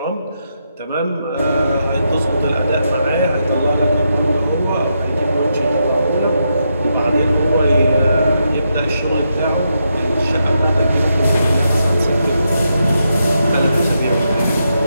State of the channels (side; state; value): both; inverted; correlation -0.83